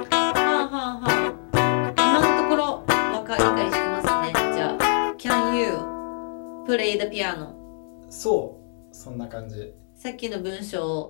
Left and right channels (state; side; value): silent; right; digital silence